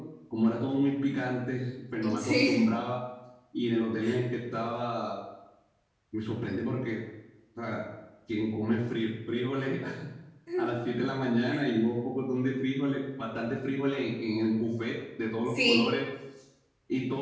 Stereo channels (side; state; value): both; identical; correlation 1.00